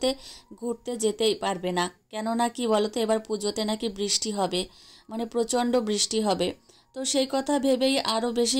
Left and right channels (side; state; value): both; identical; correlation 1.00